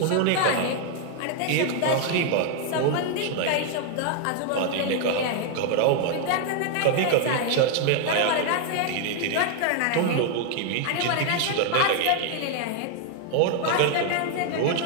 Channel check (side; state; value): both; different; correlation 0.00